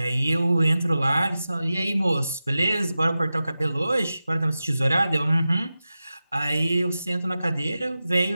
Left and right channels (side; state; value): both; inverted; correlation -0.94